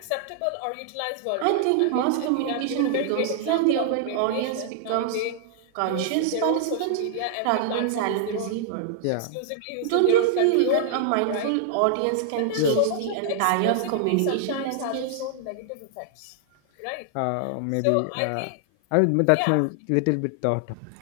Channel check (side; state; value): both; different; correlation -0.01